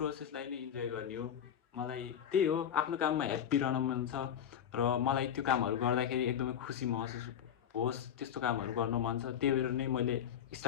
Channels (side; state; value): right; quieter; 9.1 dB